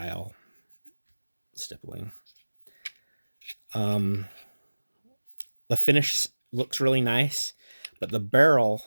stippling. The finish looks really nice, but the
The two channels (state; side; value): inverted; both; correlation -1.00